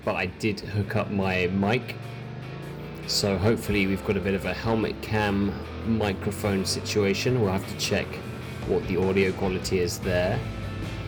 but I did hook up my mic. So hopefully we've got a bit of a helmet cam microphone situation. We'll have to check what the audio quality is there.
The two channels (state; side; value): identical; both; correlation 1.00